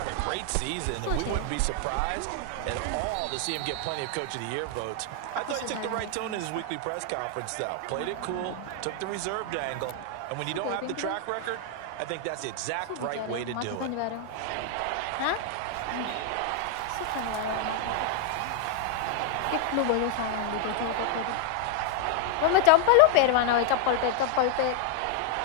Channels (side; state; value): both; different; correlation 0.00